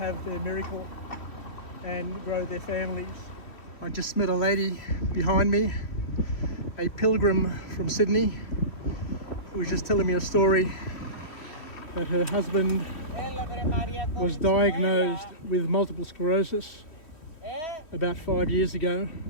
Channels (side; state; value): right; late; 3.3 ms